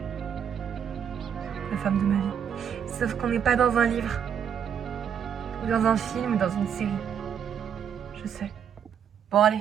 la femme de ma vie. Sauf qu'on n'est pas dans un livre, ou dans un film, ou dans une série. Je sais. Bon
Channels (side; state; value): left; quieter; 8.2 dB